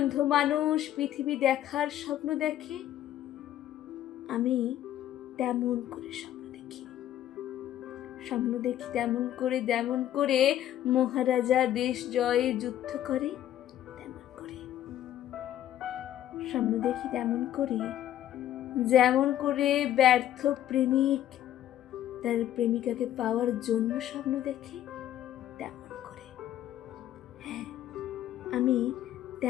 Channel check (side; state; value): right; quieter; 12.0 dB